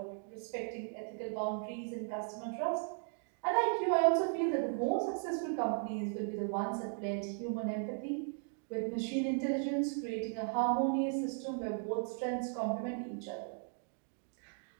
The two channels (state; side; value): silent; left; 53 dB below the other